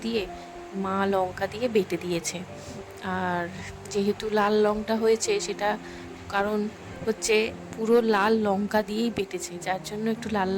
দিয়ে মা লঙ্কা দিয়ে বেটে দিয়েছে। আর যেহেতু লাল লঙ্কা হয়েছে, সেটা কারণ হচ্ছে পুরো লাল লঙ্কা দিয়েই বেটেছে, যার জন্য একটু লাল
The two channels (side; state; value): both; identical; correlation 1.00